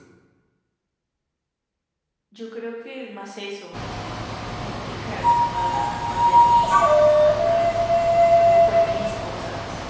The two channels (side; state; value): both; identical; correlation 1.00